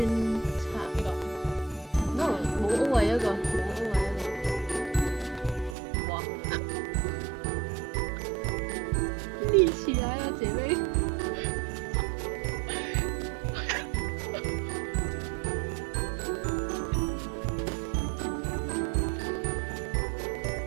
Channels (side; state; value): left; drops out; at 5.8 s